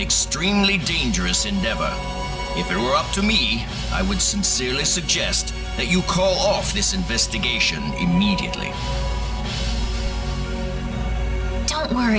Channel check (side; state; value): both; identical; correlation 1.00